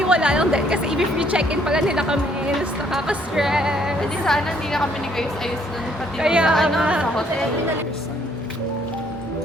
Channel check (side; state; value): both; normal; correlation 0.66